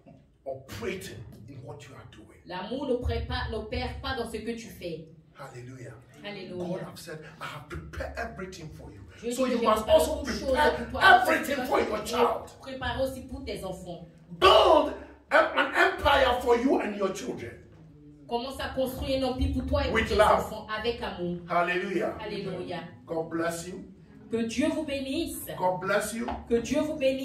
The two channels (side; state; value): both; identical; correlation 1.00